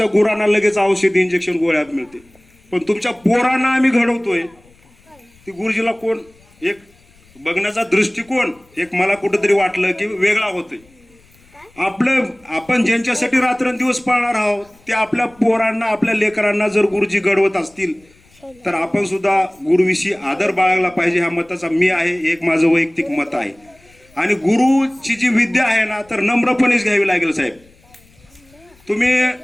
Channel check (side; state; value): left; noise; rumble, 30 dB below the sound